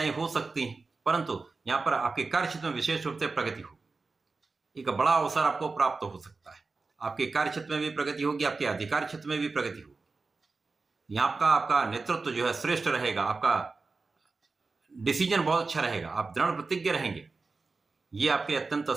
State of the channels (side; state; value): left; quieter; 4.0 dB